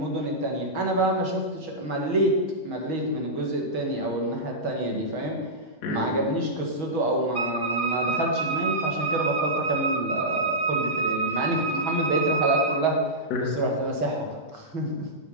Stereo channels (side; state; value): right; late; 6.3 ms